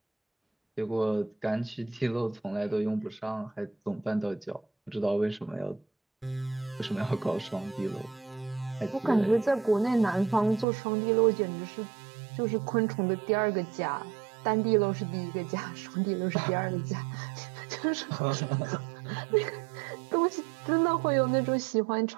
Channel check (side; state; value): left; drops out; at 10.7 s